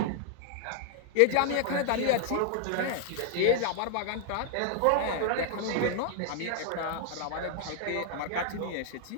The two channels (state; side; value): different; both; correlation 0.00